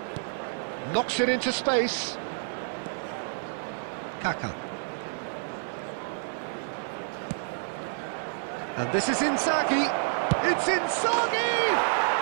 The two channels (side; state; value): left; silent; digital silence